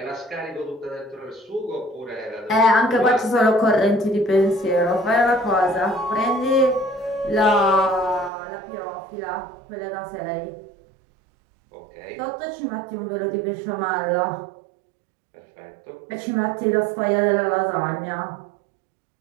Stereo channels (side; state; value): left; drops out; at 8.3 s